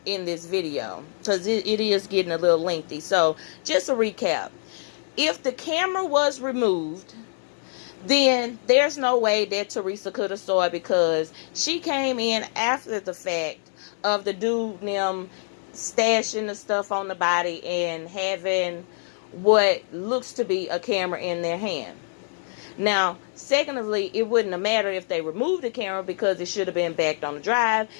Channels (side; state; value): right; silent; digital silence